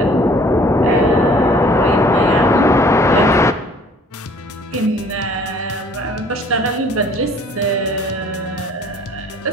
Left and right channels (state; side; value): normal; both; correlation 0.55